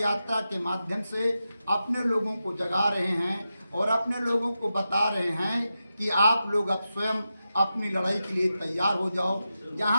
के माध्यम से अपने लोगों को जगा रहे हैं और अपने लोगों को बता रहे हैं कि आप लोग अब स्वयं अपनी लड़ाई के लिए तैयार हो जाओ।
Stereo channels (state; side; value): inverted; both; correlation -0.90